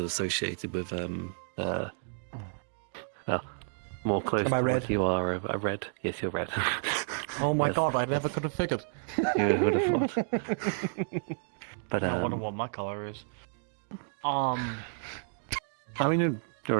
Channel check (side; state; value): left; silent; digital silence